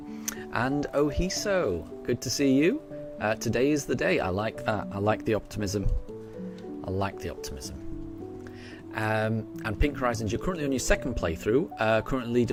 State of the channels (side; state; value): both; identical; correlation 1.00